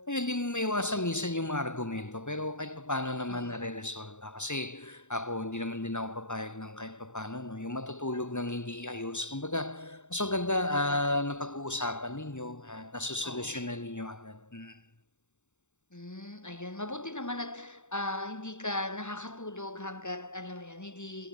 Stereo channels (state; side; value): late; right; 0.84 ms